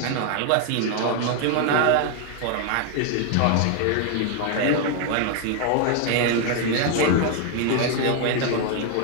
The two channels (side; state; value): both; different; correlation 0.01